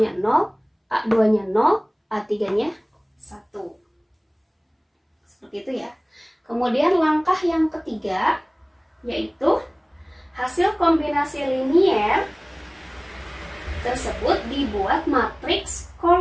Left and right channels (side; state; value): both; identical; correlation 1.00